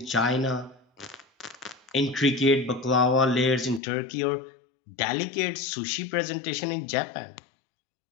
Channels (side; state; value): right; drops out; at 3.8 s